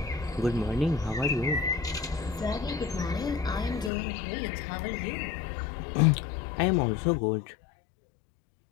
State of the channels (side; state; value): right; drops out; at 3.9 s